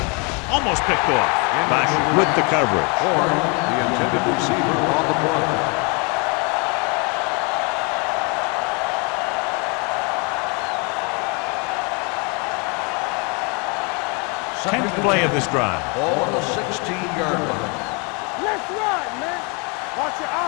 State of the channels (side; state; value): right; quieter; 32.7 dB